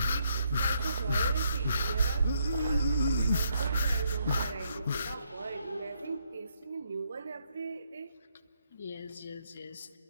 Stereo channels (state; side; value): inverted; both; correlation -0.74